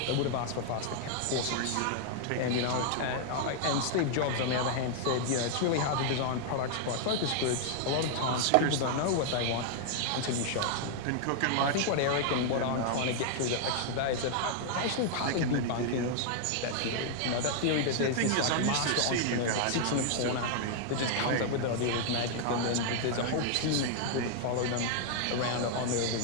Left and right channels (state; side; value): different; both; correlation 0.00